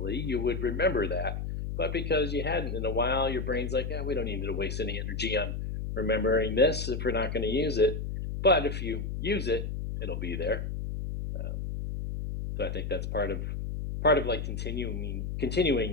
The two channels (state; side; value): noise; left; hum, 4 dB below the sound